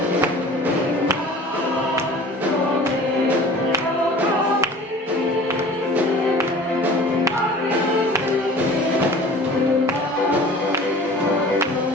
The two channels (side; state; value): both; normal; correlation 0.43